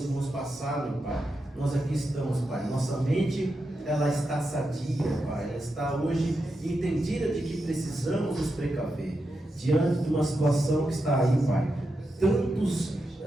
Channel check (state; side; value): normal; both; correlation 0.87